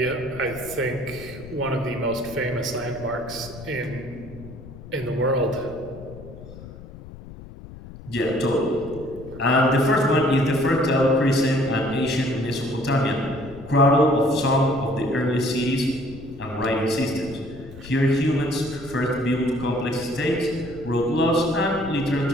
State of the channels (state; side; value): noise; left; rumble, 16 dB below the sound